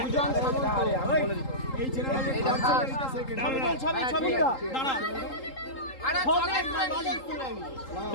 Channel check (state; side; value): late; right; 3.8 ms